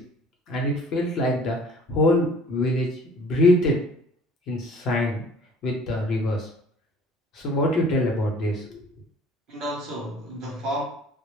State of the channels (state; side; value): normal; both; correlation 0.51